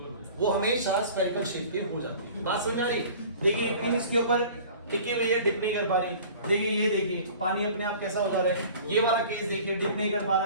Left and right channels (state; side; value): inverted; both; correlation -0.44